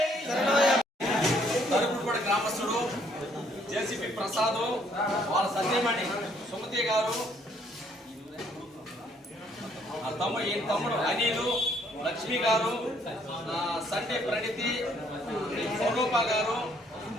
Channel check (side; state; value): both; normal; correlation 0.66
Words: తరుగుడుపడి గ్రామస్తుడు JCP Prasad వాళ్ళ సత్యమణి సుమతి గారు తమ్ముడు అనిలు లక్ష్మి గారు సండే ప్రణితి స్వరూప గారు